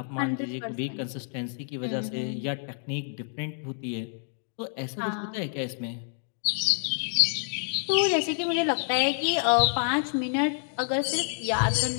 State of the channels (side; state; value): right; silent; 59 dB below the other